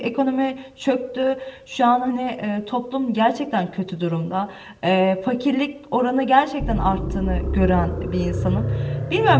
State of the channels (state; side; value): identical; both; correlation 1.00